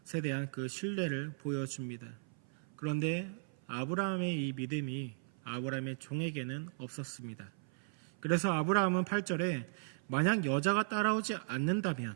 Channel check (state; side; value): silent; left; 53 dB below the other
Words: 대한 그 신뢰를 보여줍니다. 그런데 아브라함의 이 믿음이 아브라함의 종에게는 없었습니다. 그래서 아브라함은 8절에 만약 여자가 따라오지 않는다면